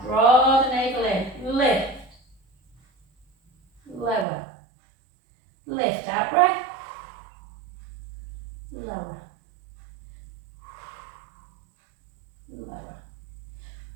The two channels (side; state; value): left; drops out; at 4.2 s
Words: Draw the navel in. Lift. Lower. Lift. Out breath. Lower. Lower.